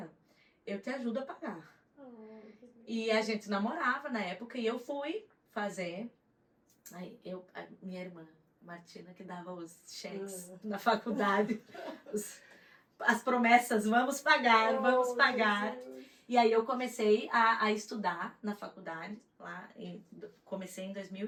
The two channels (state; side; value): identical; both; correlation 1.00